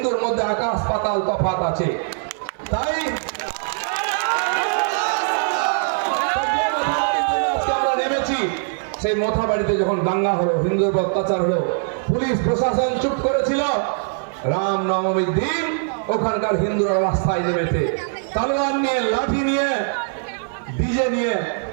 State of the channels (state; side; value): silent; left; 56 dB below the other